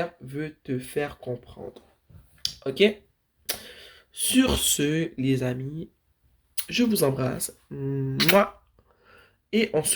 veut te faire comprendre. Ok? Sur ce, les amis, je vous embrasse. Mouah. Et on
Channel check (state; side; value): identical; both; correlation 1.00